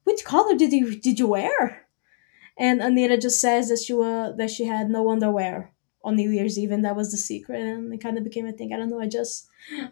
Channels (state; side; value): silent; right; digital silence